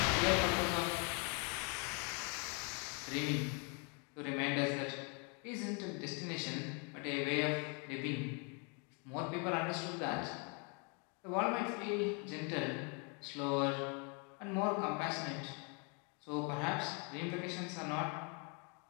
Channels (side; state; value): right; quieter; 35.4 dB